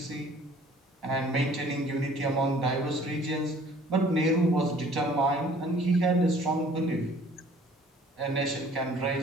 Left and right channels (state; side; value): normal; both; correlation 0.54